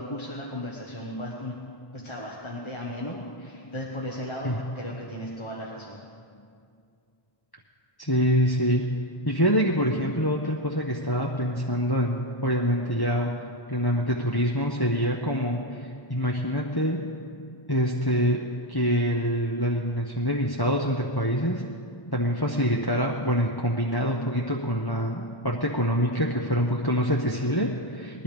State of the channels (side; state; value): right; late; 1.1 ms